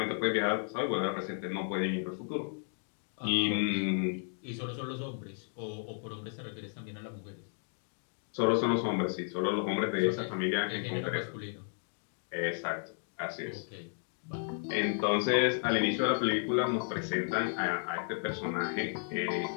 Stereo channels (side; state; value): right; silent; 55 dB below the other